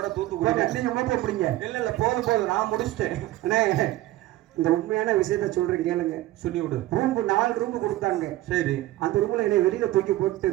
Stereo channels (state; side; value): quieter; left; 16.1 dB